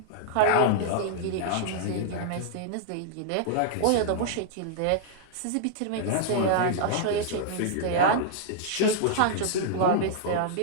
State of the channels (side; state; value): both; different; correlation -0.01